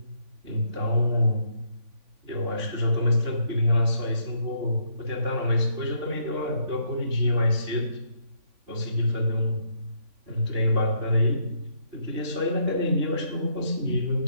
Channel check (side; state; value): left; late; 3.5 ms